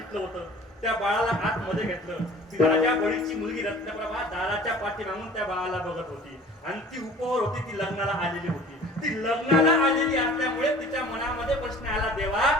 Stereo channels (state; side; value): normal; both; correlation 0.46